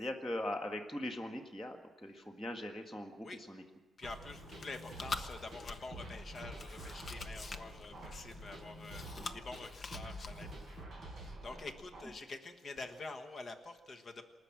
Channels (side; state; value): both; normal; correlation 0.83